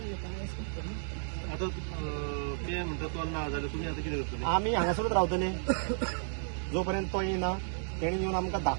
आता ते म्हणतात तो ना जाल्यार तुम्ही आता कितें करतले? आमी हांगासरूच रावतले जोपर्यंत तो येना. तेणी येवन आमकां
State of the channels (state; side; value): silent; left; 56 dB below the other